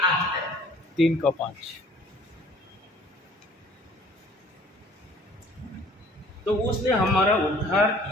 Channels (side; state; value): both; normal; correlation 0.53